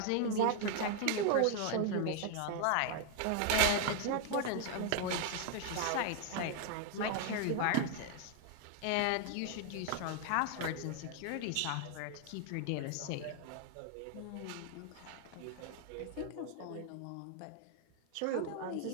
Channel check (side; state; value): both; different; correlation 0.00